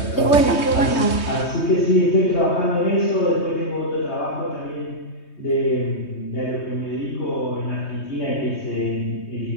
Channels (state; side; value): late; right; 3.2 ms